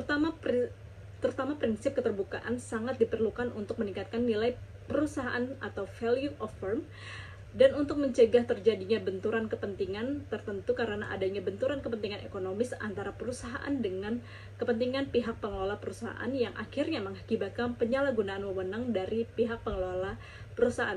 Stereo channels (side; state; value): both; identical; correlation 1.00